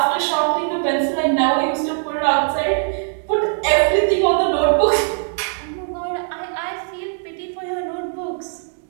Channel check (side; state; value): left; silent; digital silence